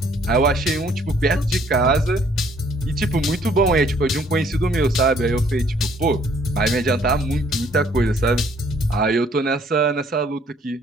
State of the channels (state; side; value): normal; both; correlation 0.62